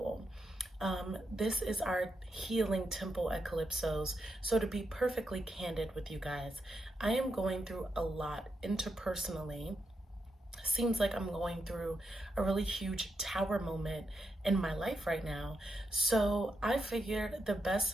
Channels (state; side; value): normal; both; correlation 0.84